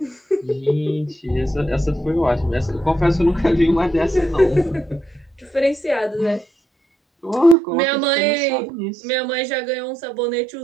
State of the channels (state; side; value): drops out; left; at 7.6 s